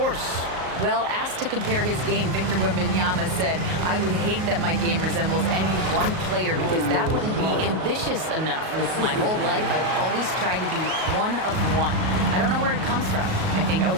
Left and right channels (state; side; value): late; left; 38 ms